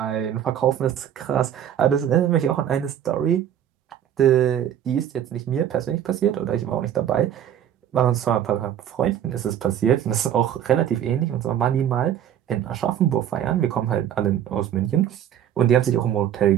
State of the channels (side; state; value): left; quieter; 10.2 dB